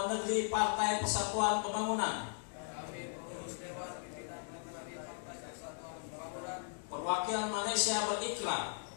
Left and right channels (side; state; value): right; silent; digital silence